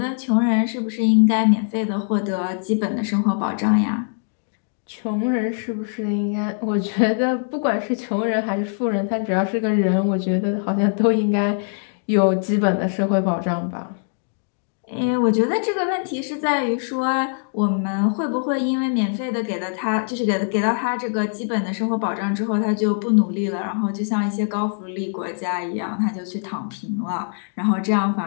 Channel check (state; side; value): silent; right; digital silence